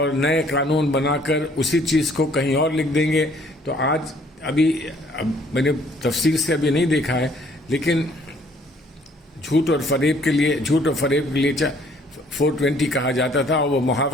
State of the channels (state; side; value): normal; both; correlation 0.61